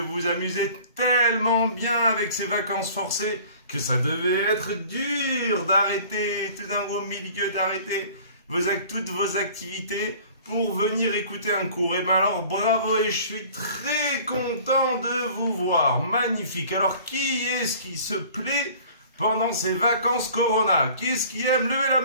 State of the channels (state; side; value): inverted; both; correlation -0.48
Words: vous amusez tellement bien avec ces vacances forcées que ça devait être dur d'arrêter, tout d'un gros milieu d'arrêter toutes vos activités pour venir écouter un cours. Et bien alors bravo et je suis très content de vous voir, magnifique. Alors qui est-ce qui se plaît pendant ces vacances Corona? Qui est-ce qui aime? Levez la